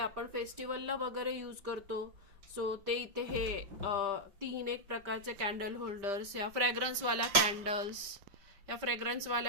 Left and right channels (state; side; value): late; left; 5.1 ms